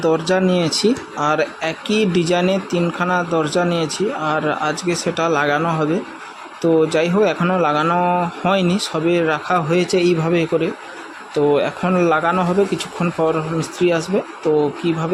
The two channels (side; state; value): both; identical; correlation 1.00